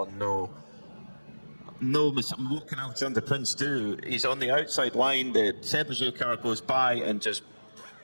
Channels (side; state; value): both; inverted; correlation -1.00